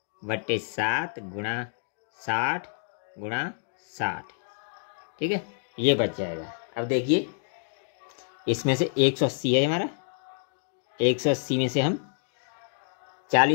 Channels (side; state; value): right; silent; digital silence